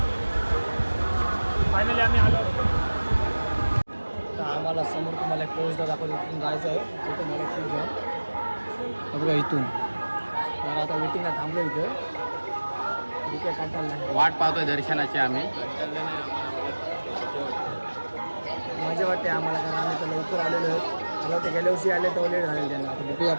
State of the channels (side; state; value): both; inverted; correlation -1.00